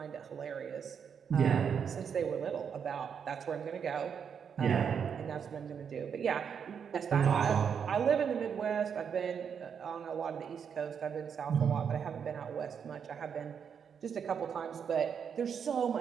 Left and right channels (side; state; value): left; quieter; 7.2 dB